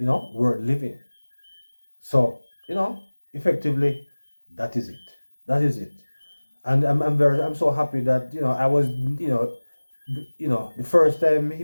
living. So, effectively, that is it. That is it. And I'm so happy that I was the first time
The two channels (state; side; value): inverted; both; correlation -1.00